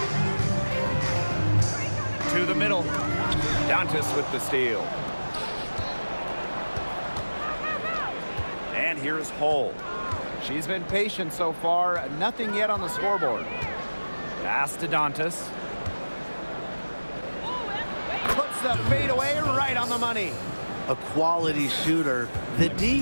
To the middle. Dantas with the steal. And here's Hull. She's been patient so far. Nothing yet on the scoreboard. Pass to Dantas. Puts the fadeaway right on the money. A quality shooter. The D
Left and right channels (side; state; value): both; inverted; correlation -1.00